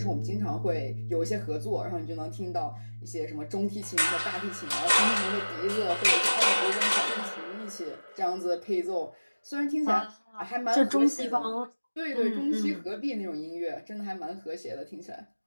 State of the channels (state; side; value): inverted; both; correlation -1.00